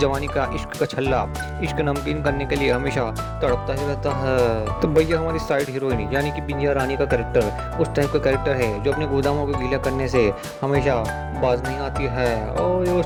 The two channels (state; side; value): identical; both; correlation 1.00